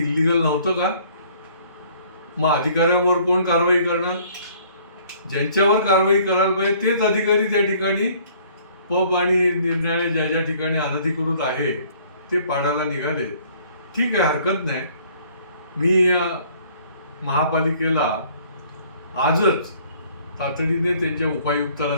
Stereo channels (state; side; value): inverted; both; correlation -0.58